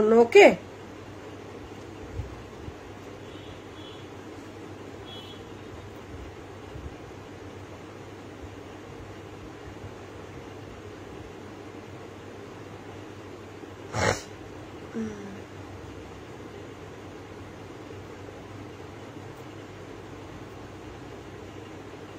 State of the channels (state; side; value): identical; both; correlation 1.00